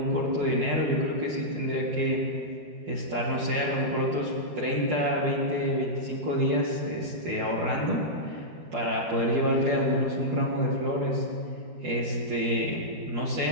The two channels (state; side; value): late; left; 13 ms